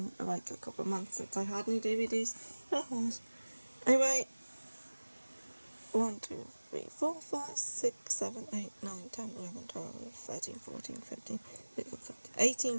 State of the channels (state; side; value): inverted; both; correlation -1.00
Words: like a couple of months since I had any DVDs. It has. Anyway, 1, 2, 3, 4, 5, 6, 7, 8, 9, 10, 11, 12, 13, 14, 15, 16, 17, 18